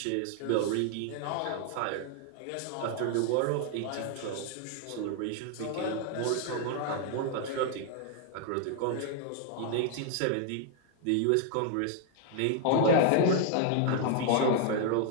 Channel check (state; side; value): different; both; correlation 0.00